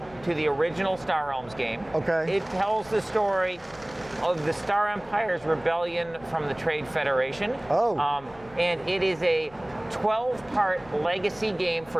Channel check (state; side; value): noise; left; rumble, 23 dB below the sound